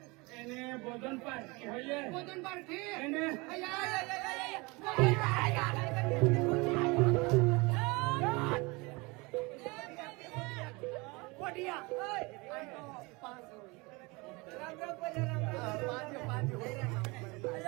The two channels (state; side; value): quieter; left; 25.9 dB